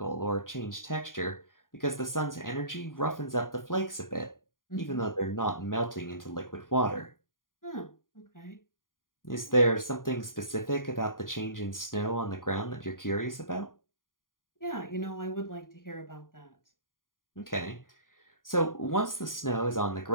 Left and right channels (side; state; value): right; late; 0.90 ms